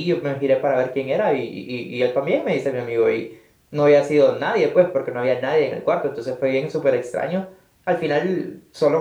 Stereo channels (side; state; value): both; identical; correlation 1.00